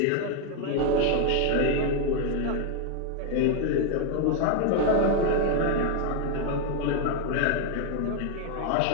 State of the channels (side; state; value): both; different; correlation 0.01